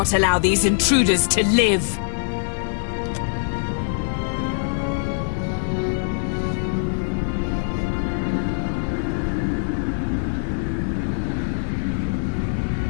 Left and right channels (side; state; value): right; silent; digital silence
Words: allow these intruders to live.